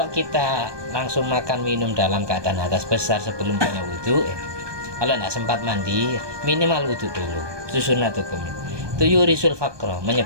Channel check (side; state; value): left; late; 1.2 ms